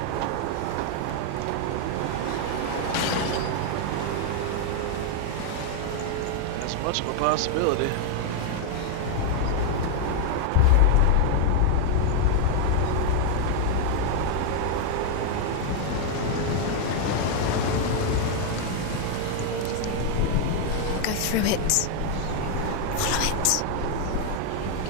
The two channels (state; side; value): different; both; correlation 0.00